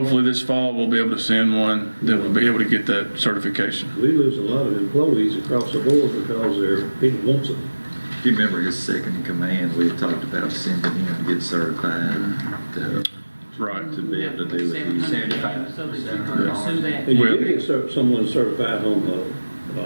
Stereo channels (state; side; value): inverted; both; correlation -1.00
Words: this fall we'll be able to send one that will be able to get that certification. We lose a lot of employees across the board because people want them. If you remember his second in command, we had talked about sending him to get certified to be able to do it. 75. So that you can pursue that. And you did get someone certified on the